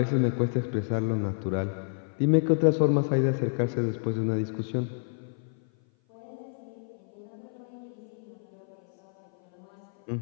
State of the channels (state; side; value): silent; right; 56 dB below the other